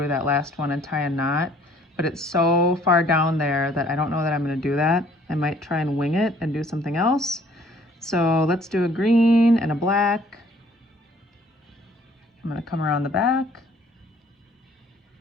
that last one and tie a knot. But it's so far down there that I don't know that I'm gonna do that. I might try and wing it and do something else. So let's do a green and a black. I'm gonna come around the back.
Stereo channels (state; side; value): normal; both; correlation 0.59